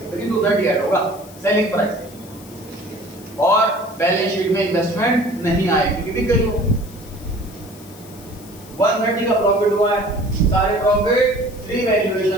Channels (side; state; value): left; noise; hiss, 21 dB below the sound